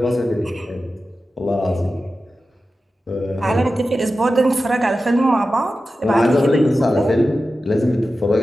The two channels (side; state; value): both; normal; correlation 0.93